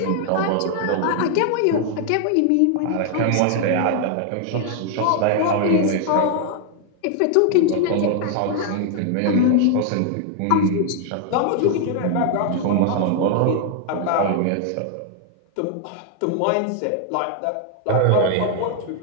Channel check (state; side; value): different; both; correlation 0.00